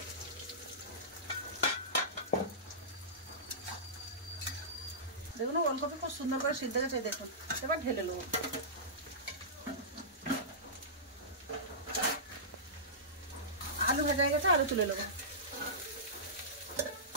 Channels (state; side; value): normal; both; correlation -0.19